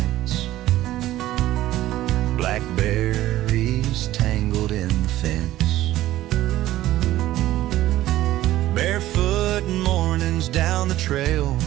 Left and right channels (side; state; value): left; quieter; 14.9 dB